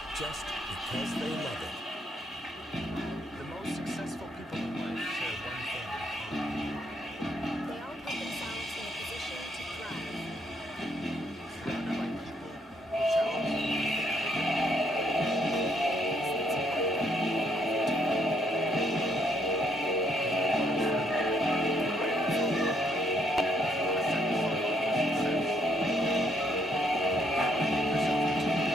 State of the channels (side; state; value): both; normal; correlation 0.71